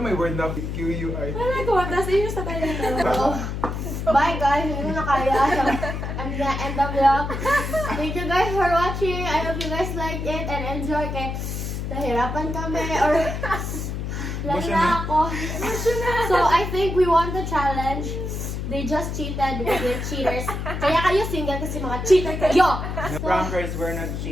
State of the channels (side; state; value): left; noise; hum, 4 dB below the sound